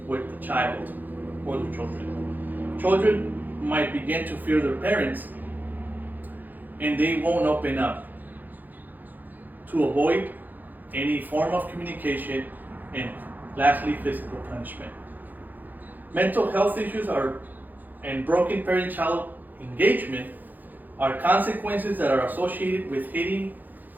with the child or the children. Children might begin to fear their parents and they won't open up to avoid any form of communication, and lastly, physical punishment. Mental health issues and broken parent-child engagement are consequences that are associated with hitting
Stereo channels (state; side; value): late; left; 0.085 ms